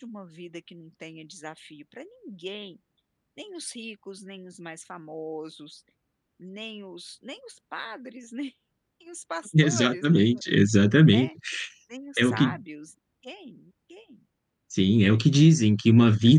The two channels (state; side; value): identical; both; correlation 1.00